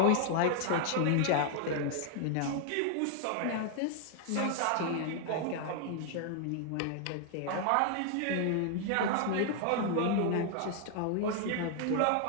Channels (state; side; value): different; both; correlation 0.00